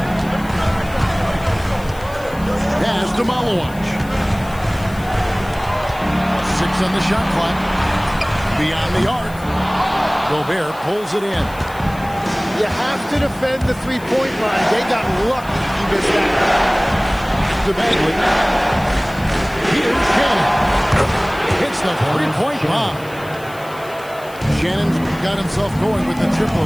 Pass to Malawach. 6 on the shot clock. Beyond the arc. Gobert pulls it in. You have to defend the three-point line. They got lucky he missed that. To Bagley. Here's Shannon. Hits the three-point bomb. Shannon's got himself going with the triple,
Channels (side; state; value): left; noise; hiss, 21 dB below the sound